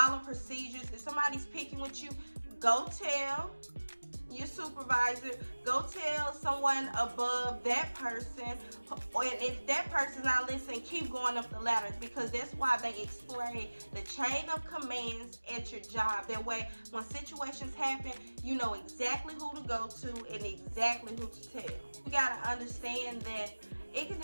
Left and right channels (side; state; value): both; inverted; correlation -1.00